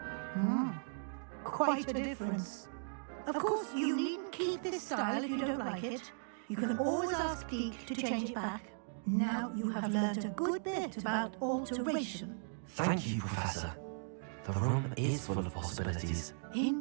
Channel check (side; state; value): left; silent; digital silence